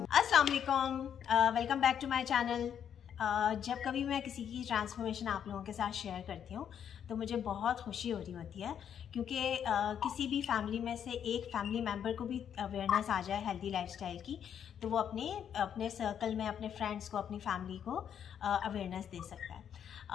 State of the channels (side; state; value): right; quieter; 8.7 dB